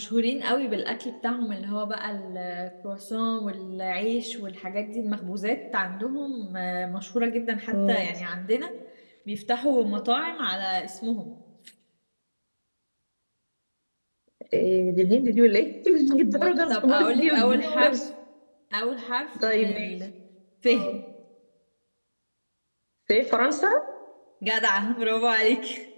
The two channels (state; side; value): inverted; both; correlation -1.00